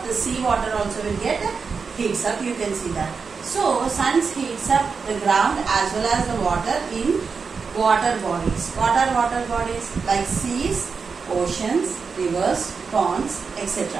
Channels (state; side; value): quieter; left; 5.2 dB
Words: the sea water also will get heats up. You can see that. So sun heats up the ground as well as the water in water bodies. What are water bodies? Like seas, oceans, rivers, ponds,